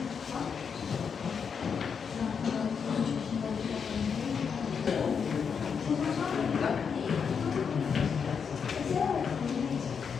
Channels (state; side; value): quieter; right; 6.4 dB